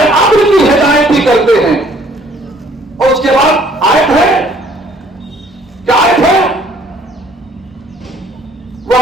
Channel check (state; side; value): normal; both; correlation 0.59